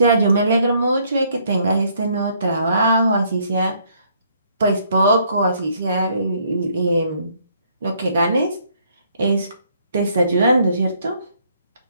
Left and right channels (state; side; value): inverted; both; correlation -0.67